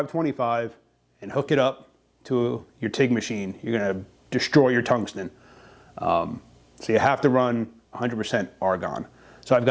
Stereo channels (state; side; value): identical; both; correlation 1.00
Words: and hook it up to your TIG machine. You're gonna destroy your tungsten. So you have to run 100% argon. So I've